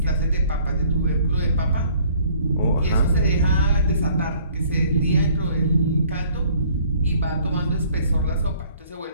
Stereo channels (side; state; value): both; inverted; correlation -0.57